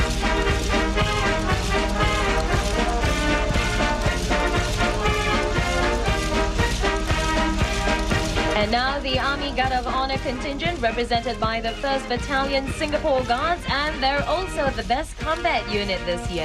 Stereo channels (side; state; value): both; identical; correlation 1.00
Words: And now the Army Guard of Honour contingent represented by the 1st Battalion Singapore Guards, and they're also the best combat unit this